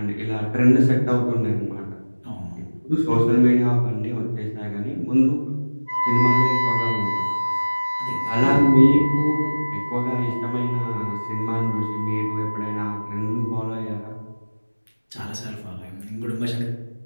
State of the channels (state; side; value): inverted; both; correlation -1.00